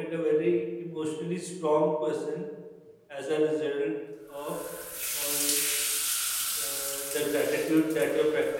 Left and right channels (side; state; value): both; identical; correlation 1.00